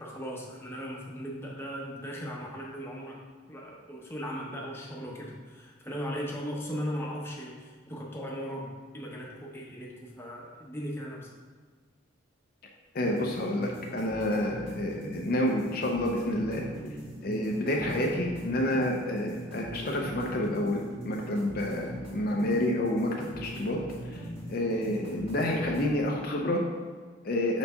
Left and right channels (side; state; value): both; normal; correlation 0.45